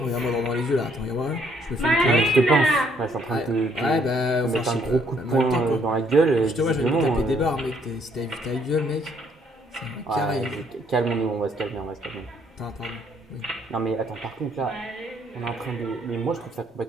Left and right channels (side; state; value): both; normal; correlation 0.67